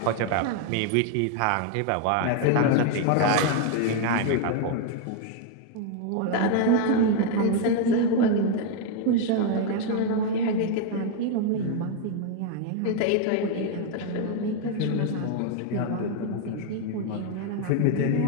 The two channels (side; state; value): both; different; correlation 0.01